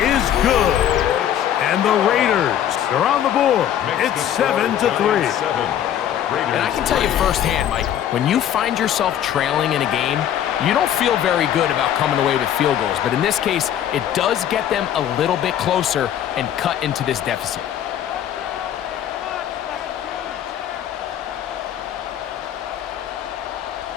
good. And the Raiders are on the board. It's 7-3. And I can tell you firsthand, Mike, when you find yourself trailing in a game, you don't feel very good about coming away with field goals. But in this case, it does get them a little bit closer and cut into this deficit.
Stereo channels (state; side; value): quieter; right; 10.5 dB